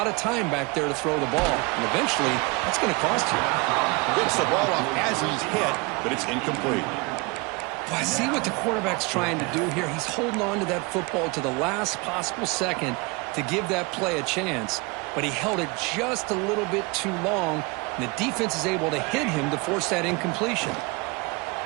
of time back there to throw the ball. And eventually, that's going to cost you. Gets the ball off as he's hit, but it's incomplete. Well, I see what the quarterback's trying to do here. He's holding on to that football to the last possible second to give that play a chance. But he held it just a little bit too long. And the defense is able to hit him to force that incompletion.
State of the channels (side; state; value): left; quieter; 27.3 dB